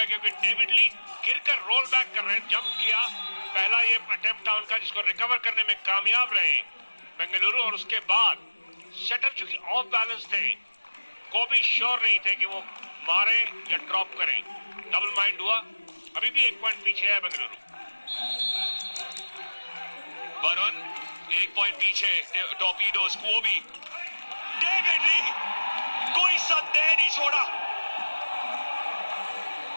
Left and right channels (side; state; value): both; inverted; correlation -1.00